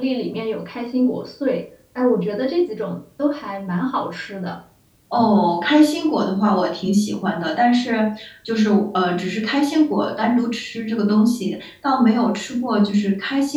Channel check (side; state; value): both; identical; correlation 1.00